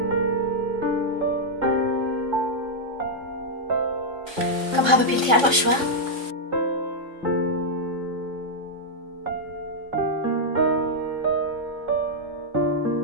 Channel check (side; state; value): left; late; 3.5 ms